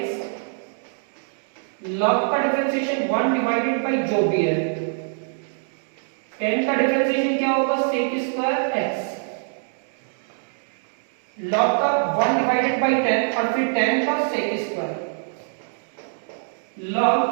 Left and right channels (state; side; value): silent; left; digital silence